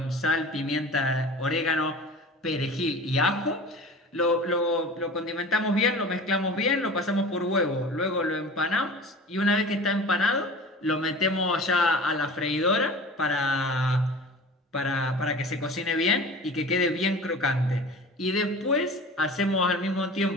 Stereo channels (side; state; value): both; normal; correlation 0.38